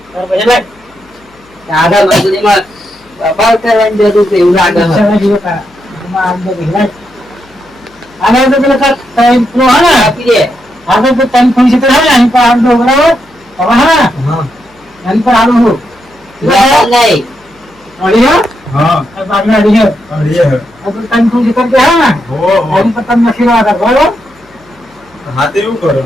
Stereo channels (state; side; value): noise; left; hum, 30 dB below the sound